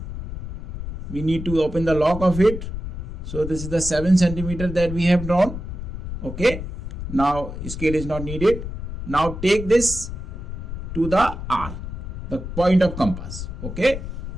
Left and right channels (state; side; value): noise; left; rumble, 7 dB below the sound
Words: We need to open the lock of it. So this is the 7 centimeter that we have drawn. Okay. Now scale is not needed. Now take this to the R, the point of compass. Okay.